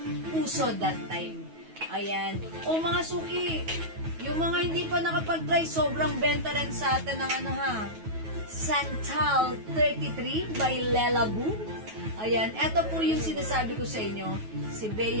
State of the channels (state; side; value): late; left; 9.3 ms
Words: uso that time. Ayan. O mga suki, yung mga hindi pa nakapag-try, sobrang benta rin sa atin ng Santal 33 by Lela Boo. Ayan, eto po yung sinasabi ko sa inyo, si